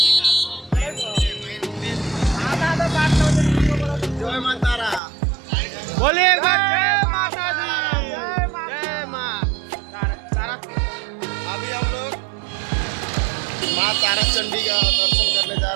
जय माँ तारा, बोलिए एक बार जय माता दी, जय माँ तारापीठ। अभी हम लोग माँ तारा चंडी का दर्शन करने जा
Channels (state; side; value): drops out; left; at 5.0 s